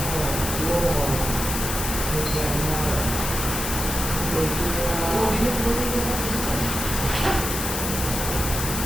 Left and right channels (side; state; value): left; noise; hiss, 3 dB below the sound